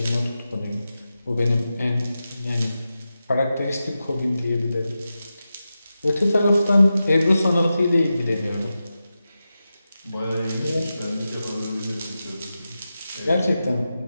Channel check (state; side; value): inverted; both; correlation -0.92